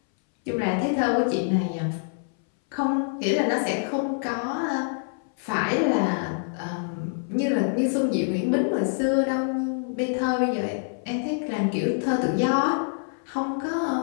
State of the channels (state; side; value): silent; right; 60 dB below the other